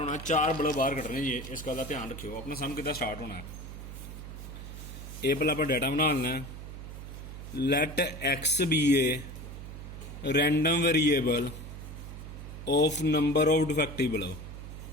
4 बल्ब बाहर कटने जी, इस गल का ध्यान रखियो। अपना सम कि स्टार्ट होना, ये पहले आप डाटा बना लेना है। Let X be a random variable of number of defective bulb.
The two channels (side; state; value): right; noise; hum, 11 dB below the sound